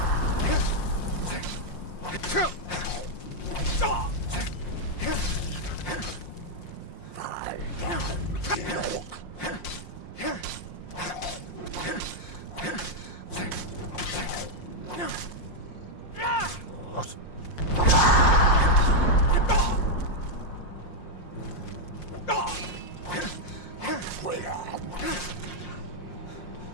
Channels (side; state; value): right; late; 5.6 ms